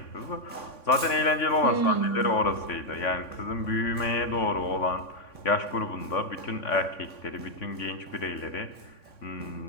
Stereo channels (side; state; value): right; late; 3.5 ms